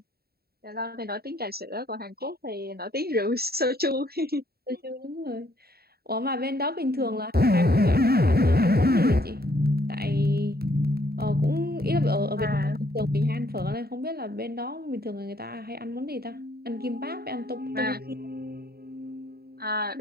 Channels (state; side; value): late; left; 0.45 ms